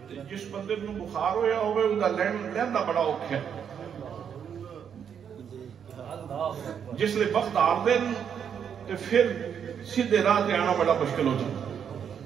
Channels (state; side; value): quieter; left; 7.9 dB